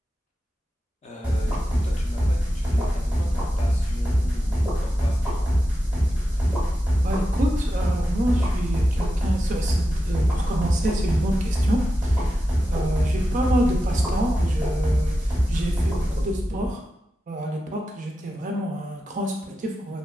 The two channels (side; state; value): both; normal; correlation 0.91